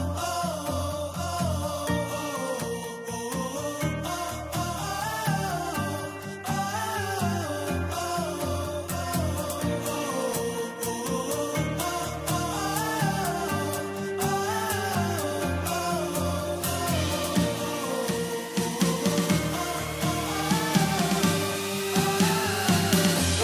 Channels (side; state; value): both; identical; correlation 1.00